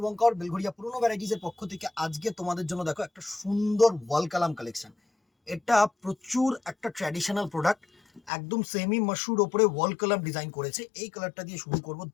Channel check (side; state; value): right; drops out; at 8.3 s